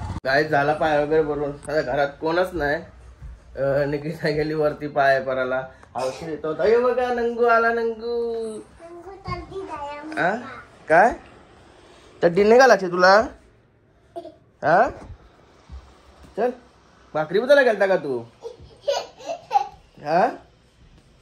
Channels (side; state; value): both; identical; correlation 1.00